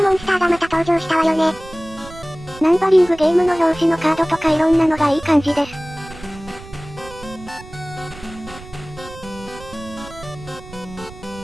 モンスターがまた登場したわよね。ナンバリングゲームの表紙のカードとかいろんなのがいい感じです。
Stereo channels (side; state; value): right; noise; rumble, 17 dB below the sound